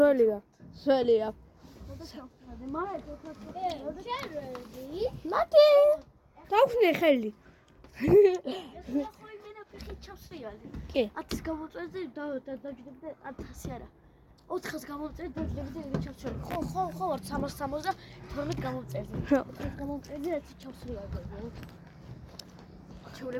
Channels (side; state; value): both; identical; correlation 1.00